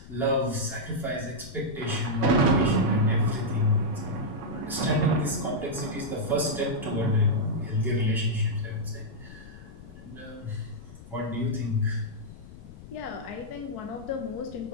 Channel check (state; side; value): noise; left; rumble, 17 dB below the sound